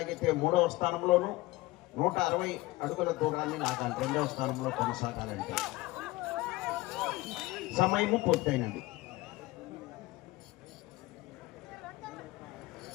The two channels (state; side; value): quieter; right; 19.5 dB